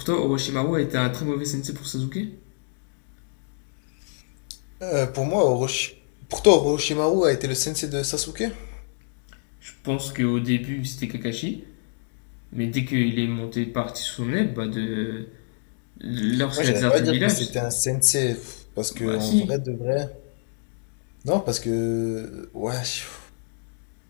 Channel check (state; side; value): silent; right; digital silence